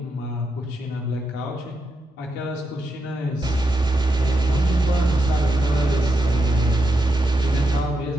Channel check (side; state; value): both; normal; correlation 0.84